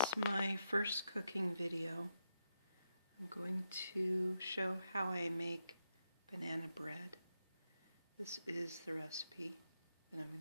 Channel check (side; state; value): both; inverted; correlation -0.83